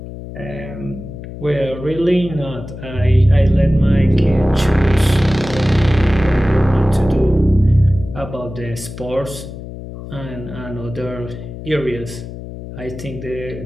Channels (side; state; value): left; noise; hum, 11 dB below the sound